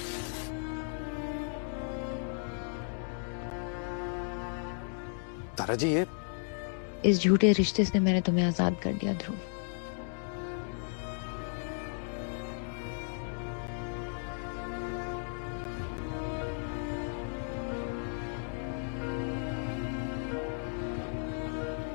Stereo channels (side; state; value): right; silent; 55 dB below the other